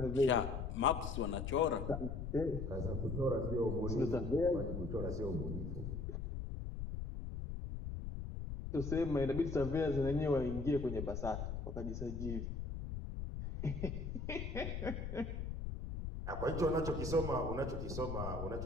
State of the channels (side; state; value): left; noise; rumble, 5 dB below the sound